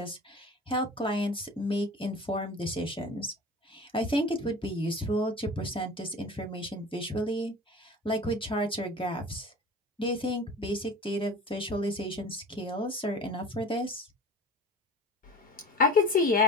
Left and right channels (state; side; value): normal; both; correlation 0.38